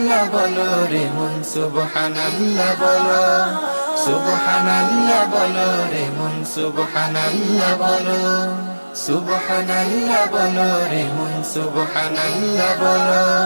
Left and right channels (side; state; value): both; inverted; correlation -1.00